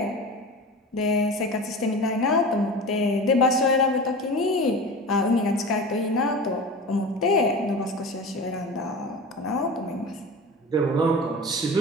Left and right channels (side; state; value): both; normal; correlation 0.32